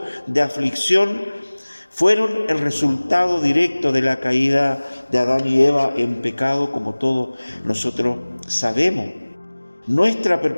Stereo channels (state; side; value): inverted; both; correlation -1.00